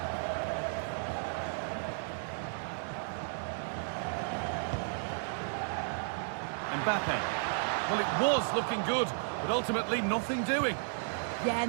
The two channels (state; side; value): silent; left; 55 dB below the other